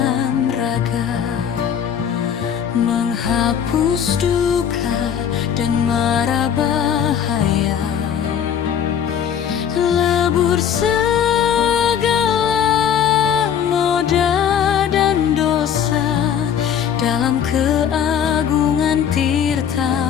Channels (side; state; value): right; quieter; 8.5 dB